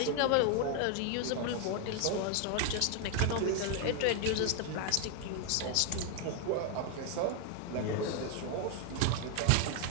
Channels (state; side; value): different; both; correlation 0.00